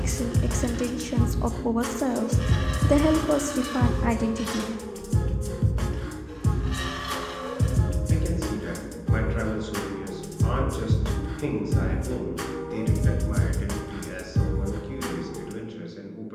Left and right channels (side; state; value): both; identical; correlation 1.00